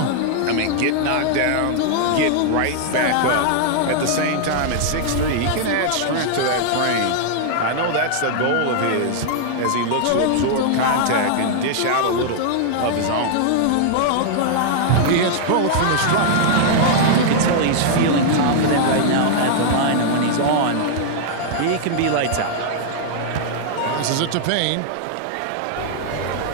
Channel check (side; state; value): both; different; correlation -0.01